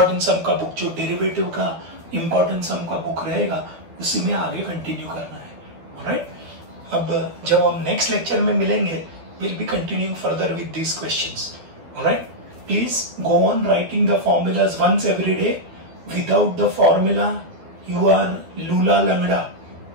सम का बुक, जो डेरिवेटिव का इंपॉर्टेंट सम का बुक रहेगा उसी में आगे कंटिन्यू करना है, राइट. अब जब हम नेक्स्ट लेक्चर में मिलेंगे will be continuing further with these questions, right. Please go on writing the formulas once every day. Without the formula, you are lula langda.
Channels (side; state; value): left; late; 12 ms